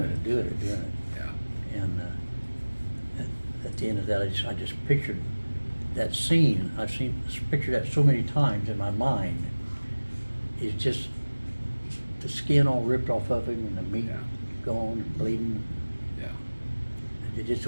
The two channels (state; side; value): inverted; both; correlation -1.00